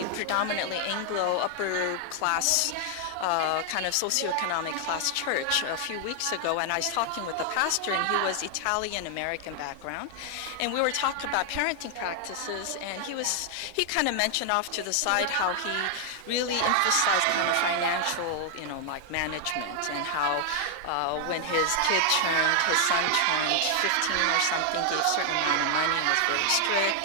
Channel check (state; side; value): different; both; correlation 0.00